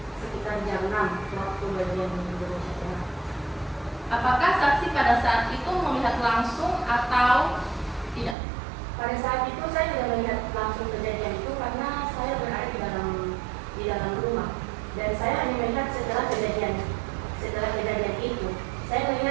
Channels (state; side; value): drops out; left; at 8.3 s